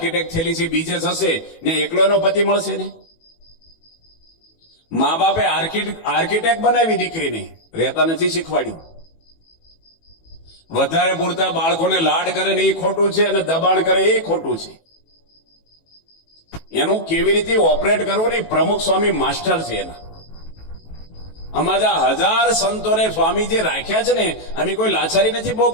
થયેલી છે બીજે થશે ને એકલો એનો પતિ મળશે ને. મા બાપે આર્કિટેક્ટ બનાવી દીકરીને, રહેતા નથી શીખવાડ્યું. વધારે પૂરતા બાળકોને લાડ કરે ને એ ખોટું છે અને દબાણ કરે એ ખોટું છે. એનું કેવી રીતે ઓપરેટ કરવું ને પ્રમુખ સ્વામી માસ્ટર છે એના. અમારા 1000 સંતોને સ્વામી જે રાખ્યા છે ને, અમે કોઈ લાચારી નથી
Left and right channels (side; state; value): right; late; 18 ms